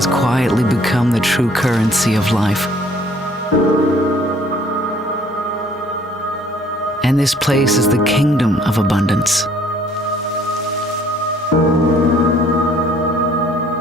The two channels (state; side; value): normal; both; correlation 0.59